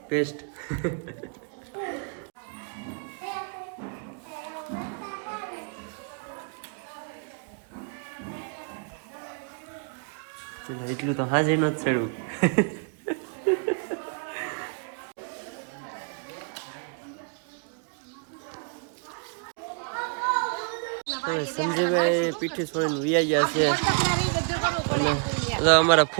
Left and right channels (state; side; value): quieter; left; 39.4 dB